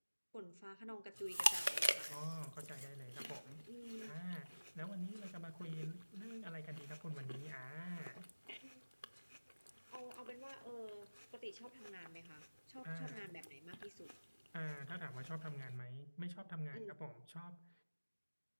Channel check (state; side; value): inverted; both; correlation -1.00